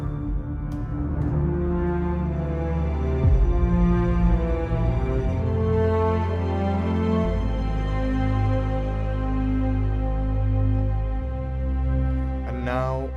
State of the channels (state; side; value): identical; both; correlation 1.00